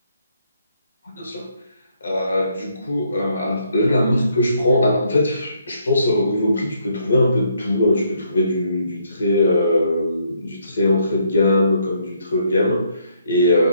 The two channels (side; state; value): both; inverted; correlation -0.71